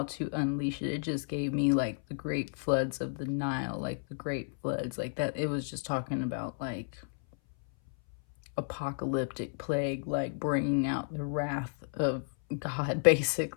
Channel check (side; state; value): right; silent; 56 dB below the other